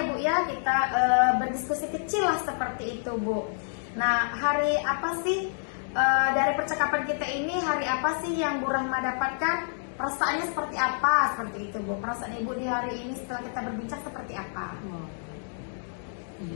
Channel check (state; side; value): silent; right; digital silence